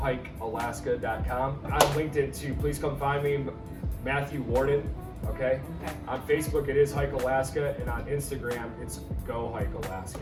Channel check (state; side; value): identical; both; correlation 1.00